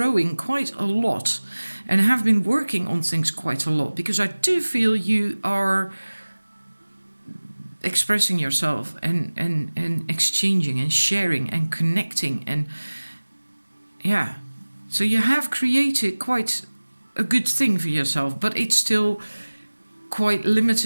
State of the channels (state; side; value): inverted; both; correlation -1.00